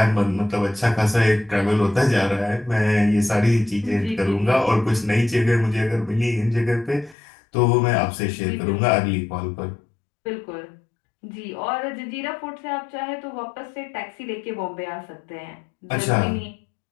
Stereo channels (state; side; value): drops out; right; at 7.2 s